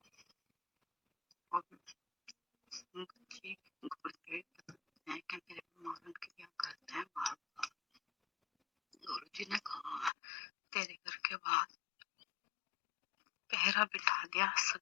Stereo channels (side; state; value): right; drops out; at 10.1 s